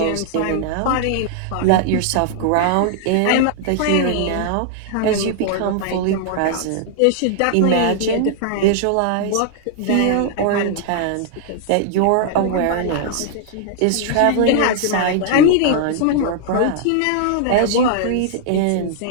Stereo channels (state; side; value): different; both; correlation -0.01